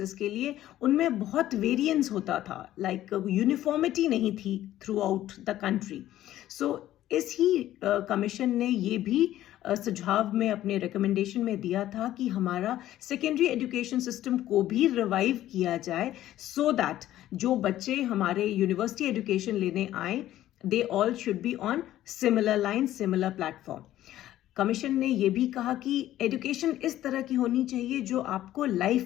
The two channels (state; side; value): quieter; right; 13.5 dB